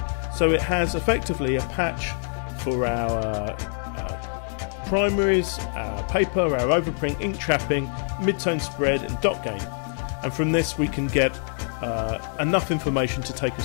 so it has effectively a patch for our primaries, our paper, our overprint, ink trapping, mid-tone spread and dot gain, and from this we can get enough information to take a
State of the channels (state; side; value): silent; right; 61 dB below the other